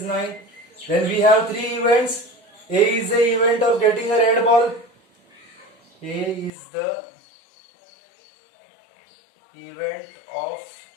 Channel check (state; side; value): drops out; right; at 6.5 s